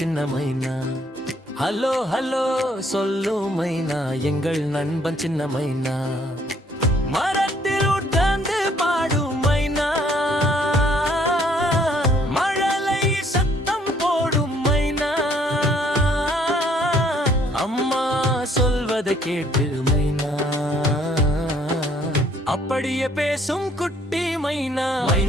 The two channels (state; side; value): normal; both; correlation 0.64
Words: மைனா ஹலோ ஹலோ சொல்லும் மைனா எங்கள் நண்பன் சின்ன மைனா மரத்தில் உட்கார்ந்து பாடும் மைனா மழலை சத்தம் போடும் மைனா அம்மா சொல்வதை கேட்டு மைனா அப்படியே பேசும் குட்டி மைனா